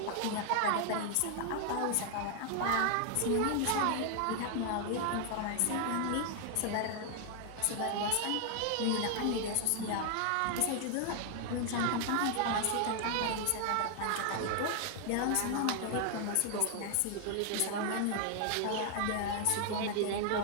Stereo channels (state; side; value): different; both; correlation 0.00